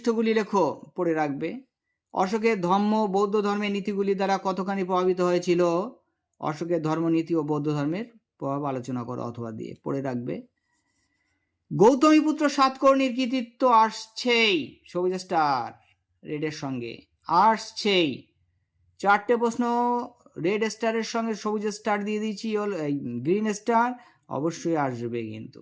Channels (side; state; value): both; identical; correlation 1.00